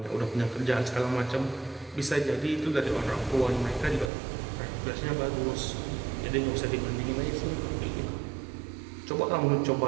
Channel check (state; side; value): drops out; left; at 4.1 s